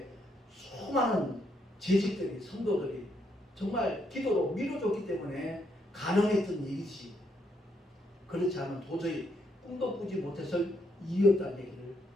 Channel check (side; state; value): both; normal; correlation 0.75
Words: 수많은 재직들이, 성도들이 정말 기도로 밀어줬기 때문에 가능했던 일이지, 그렇지 않으면 도저히 꿈도 꾸지 못해서 이었다는 얘기를